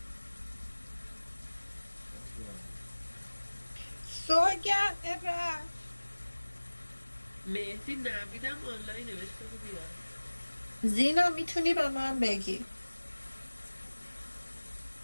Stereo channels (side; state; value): both; inverted; correlation -1.00